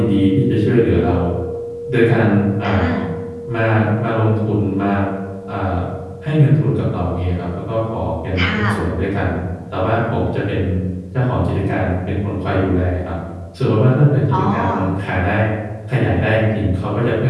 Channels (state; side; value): identical; both; correlation 1.00